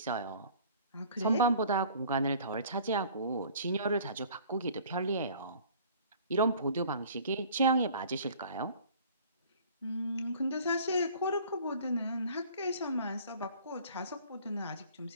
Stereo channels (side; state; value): both; inverted; correlation -0.50